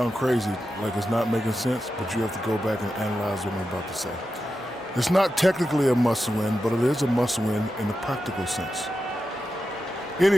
crazy, like it's not making sense, but you have to go back and analyze what I'm about to say. It's not technically a must-win, but it is a must-win in a practical sense.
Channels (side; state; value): both; normal; correlation 0.90